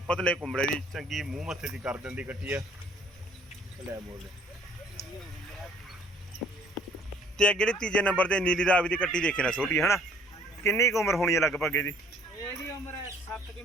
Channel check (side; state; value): both; normal; correlation 0.58